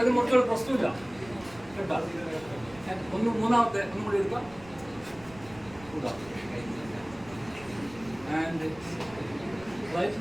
മുറിച്ചോളൂ, പ്രശ്നമില്ല കേട്ടോ. മൂന്നാമത്തെ ഒന്നും കൂടി എടുക്കാം, വിടാം. ആൻഡ് റൈറ്റ്,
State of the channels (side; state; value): right; noise; rumble, 21 dB below the sound